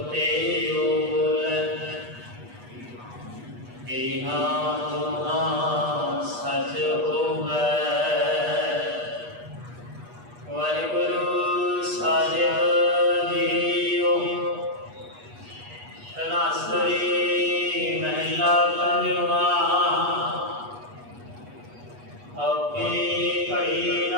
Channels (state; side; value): late; left; 8.3 ms